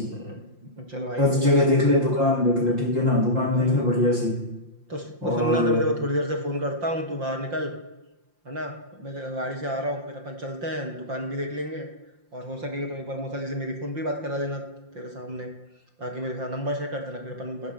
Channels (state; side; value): late; left; 5.7 ms